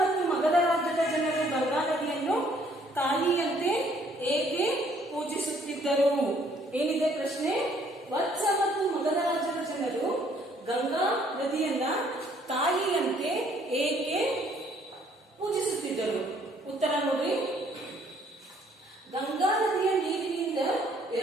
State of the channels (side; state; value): both; normal; correlation 0.63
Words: ಮಗಧ ರಾಜ್ಯದ ಜನರು ಗಂಗಾ ನದಿಯನ್ನು ತಾಯಿಯಂತೆ ಏಕೆ ಪೂಜಿಸುತ್ತಿದ್ದರು? ಏನಿದೆ ಪ್ರಶ್ನೆ? ವತ್ಸ ಮತ್ತು ಮಗಧ ರಾಜ್ಯದ ಜನರು ಗಂಗಾ ನದಿಯನ್ನ ತಾಯಿಯಂತೆ ಏಕೆ ಪೂಜಿಸುತ್ತಿದ್ದರು? ಉತ್ತರ ನೋಡ್ರಿ, ಗಂಗಾ ನದಿಯ ನೀರಿನಿಂದ